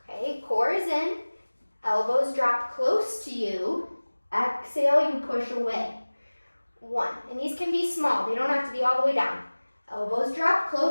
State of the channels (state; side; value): inverted; both; correlation -1.00